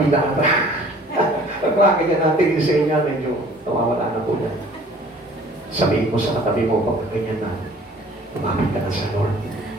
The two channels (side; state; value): both; normal; correlation 0.51